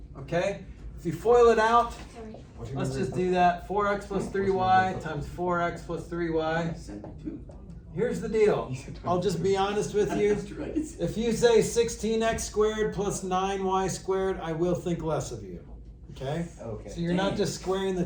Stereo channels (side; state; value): both; identical; correlation 1.00